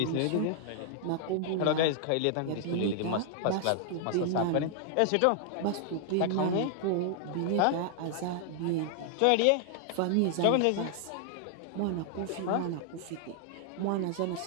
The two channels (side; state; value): both; different; correlation -0.01